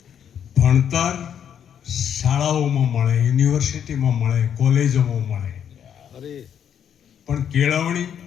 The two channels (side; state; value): right; quieter; 8.8 dB